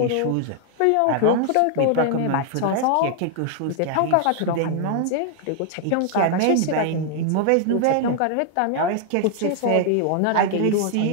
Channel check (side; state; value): both; different; correlation 0.00